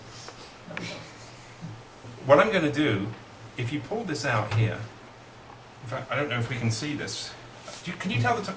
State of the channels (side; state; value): both; identical; correlation 1.00